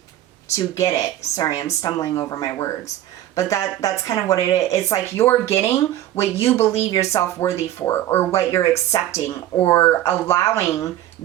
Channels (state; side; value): quieter; left; 13.0 dB